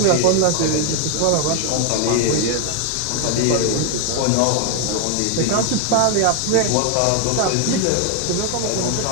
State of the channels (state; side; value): different; both; correlation 0.01